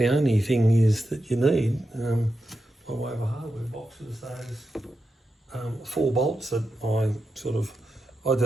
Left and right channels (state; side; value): normal; both; correlation 0.88